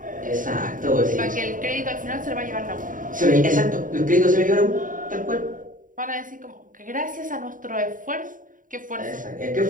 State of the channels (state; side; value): late; left; 0.39 ms